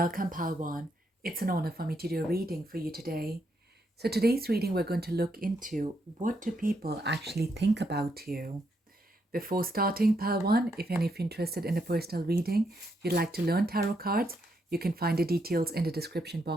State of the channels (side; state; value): both; normal; correlation 0.78